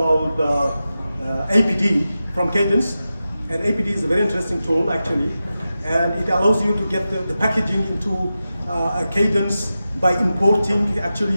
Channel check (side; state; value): both; inverted; correlation -0.92